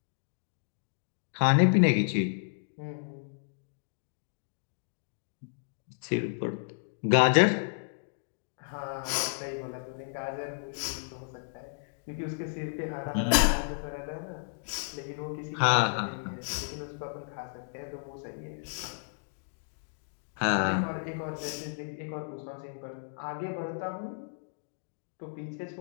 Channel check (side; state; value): right; silent; digital silence